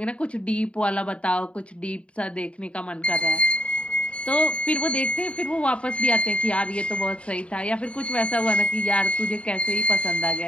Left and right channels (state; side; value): late; right; 0.061 ms